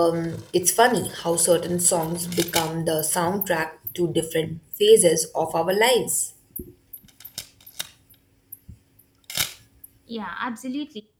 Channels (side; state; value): both; identical; correlation 1.00